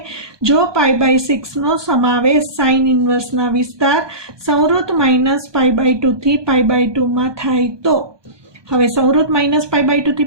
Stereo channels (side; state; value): left; late; 1.2 ms